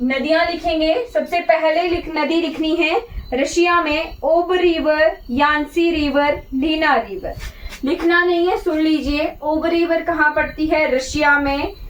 नदियां लिखेंगे, सबसे पहले नदी लिखनी है रशिया में ओब रिवर, यांसी रिवर, लीना रिवर। लिखना नहीं है, सुन लीजिए। ओब रिवर कहाँ पड़ती है, रशिया में,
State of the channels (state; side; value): identical; both; correlation 1.00